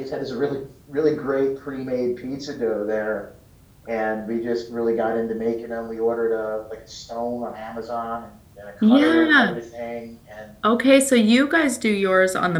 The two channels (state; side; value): identical; both; correlation 1.00